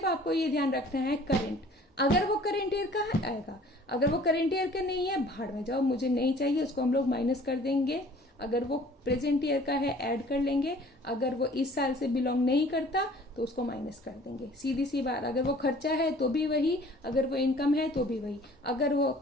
आपको ये ध्यान रखना है करंट। अगर वो करंट ईयर का आएगा, अगर वो करंट ईयर का नहीं है, भाड़ में जाओ, मुझे नहीं चाहिए, उसको हम लोग माइनस कर देंगे। अगर वो प्रेजेंट ईयर का है ऐड कर लेंगे, अगर वो इस साल से बिलोंग नहीं करता तो उसको माइनस कर देंगे, सीधी सी बात। अगर वो खर्चा है तो भी वही, अगर वो इनकम है तो भी वही। अगर वो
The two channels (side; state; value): both; normal; correlation 0.51